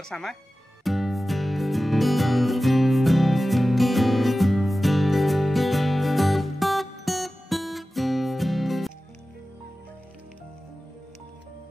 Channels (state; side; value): normal; both; correlation 0.95